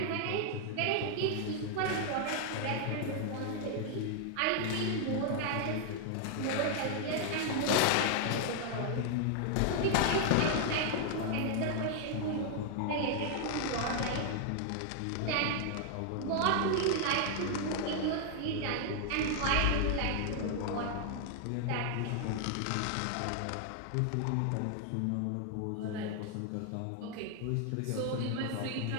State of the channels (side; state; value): both; different; correlation 0.00